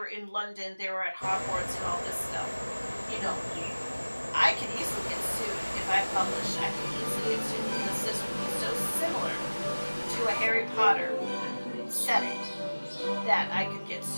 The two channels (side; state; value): both; inverted; correlation -1.00